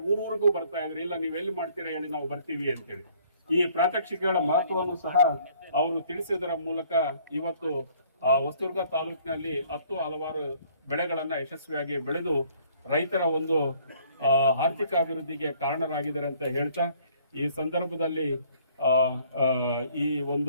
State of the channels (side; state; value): both; inverted; correlation -0.60